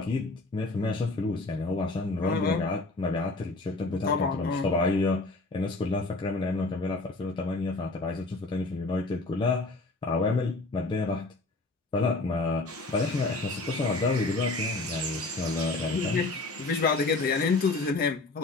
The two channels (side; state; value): right; quieter; 3.2 dB